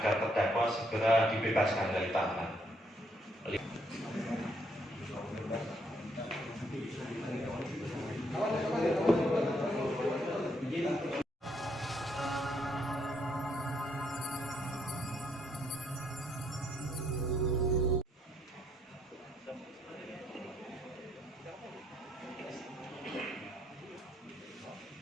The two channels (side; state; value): both; normal; correlation 0.72